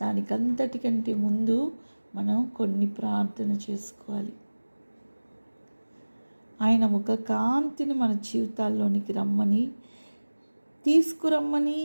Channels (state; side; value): inverted; both; correlation -1.00